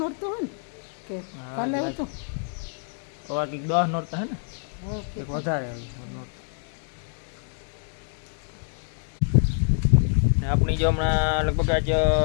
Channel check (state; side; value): silent; right; 61 dB below the other